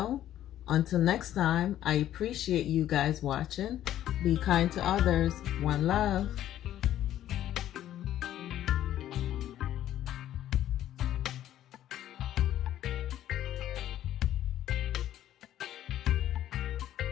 Until next time, I appreciate you guys watching. Be kind to others. One love.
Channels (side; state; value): right; quieter; 12.2 dB